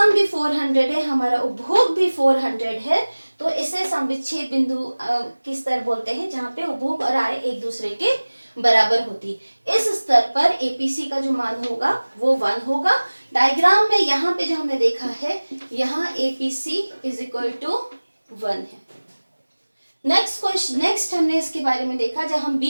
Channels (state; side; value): inverted; both; correlation -1.00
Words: भी 400 है, हमारा उपभोग भी 400 है, तो इसे सम विच्छेद बिंदु की स्तर बोलते हैं जहाँ पे उपभोग और आय एक दूसरे के बराबर होती। इस स्तर पर APC का जो मान होगा वो 1 होगा। डायग्राम में यहाँ पे जो हमने देखा है, यहाँ APC इज इक्वल टू 1 है। नेक्स्ट हमने इसके बारे में देखा, जब हम